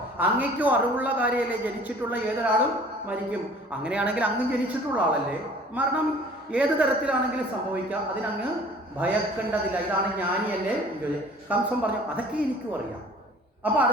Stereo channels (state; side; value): normal; both; correlation 0.49